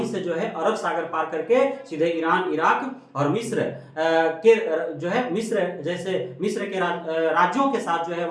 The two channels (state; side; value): identical; both; correlation 1.00